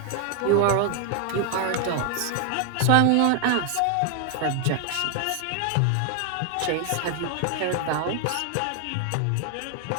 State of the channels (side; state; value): both; different; correlation 0.00